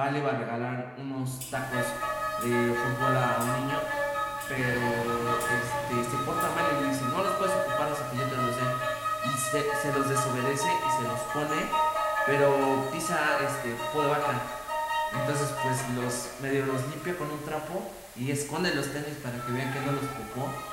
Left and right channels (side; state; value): both; identical; correlation 1.00